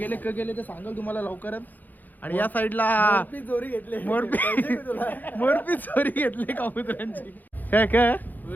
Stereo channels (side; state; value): right; late; 0.084 ms